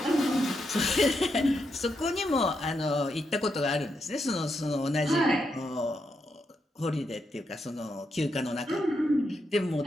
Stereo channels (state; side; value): normal; both; correlation 0.82